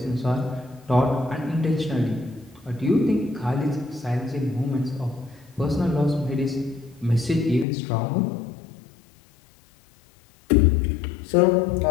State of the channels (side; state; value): right; drops out; at 7.7 s